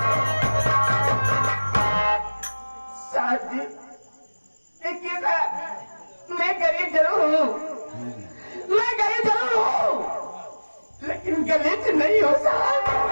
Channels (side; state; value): both; inverted; correlation -1.00